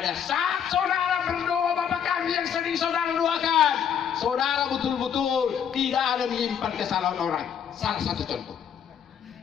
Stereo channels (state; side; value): quieter; right; 8.3 dB